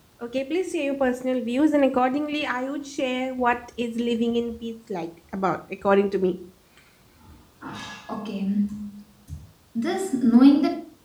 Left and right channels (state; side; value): identical; both; correlation 1.00